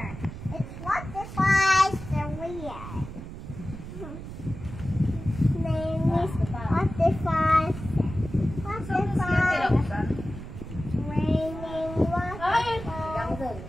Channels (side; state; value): right; noise; rumble, 11 dB below the sound